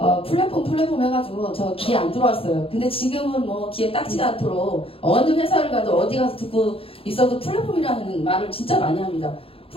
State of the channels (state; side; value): late; right; 0.27 ms